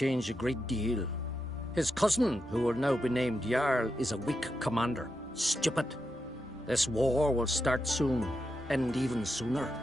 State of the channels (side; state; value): both; normal; correlation 0.86